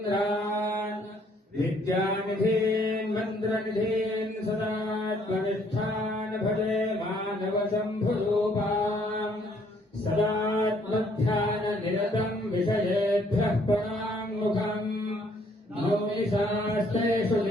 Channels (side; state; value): both; normal; correlation 0.65